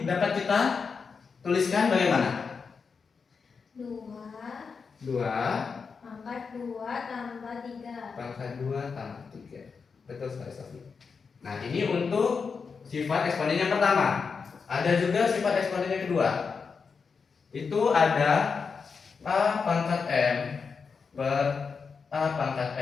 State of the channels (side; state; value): right; quieter; 5.4 dB